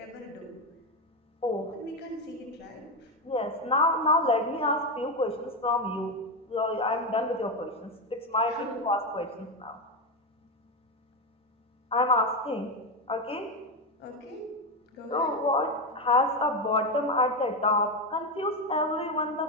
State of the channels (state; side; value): normal; both; correlation 0.12